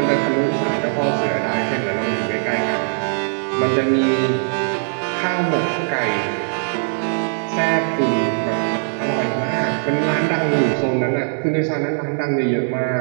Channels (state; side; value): silent; left; digital silence